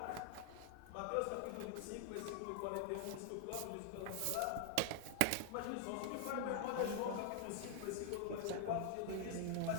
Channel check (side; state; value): both; different; correlation 0.00